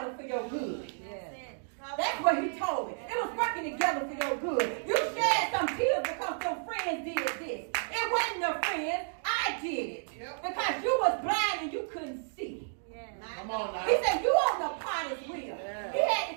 for your good. That's what he told me. It was working together for your good. You shed some tears because your friends did this. It wasn't your friends. I did it. Because you was blind and you couldn't see. Come on now. He said, you on the potter's wheel. He had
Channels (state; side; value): silent; left; digital silence